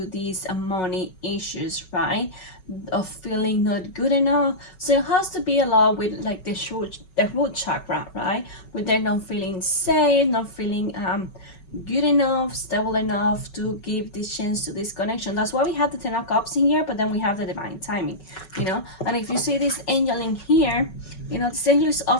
these money issues, right? Of feeling not good enough. So it has to be a lot with like the root chakra, right? With them not feeling safe, not feeling good enough, stable enough to give this chance to this connection. That's why we have the Ten of Cups in here, but then we have the divine timing, you know. And if you see this angel in here, you know, this angel is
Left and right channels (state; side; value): late; right; 5.4 ms